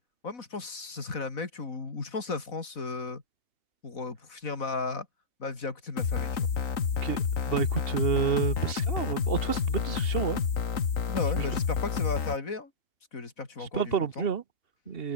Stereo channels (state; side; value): late; right; 3.9 ms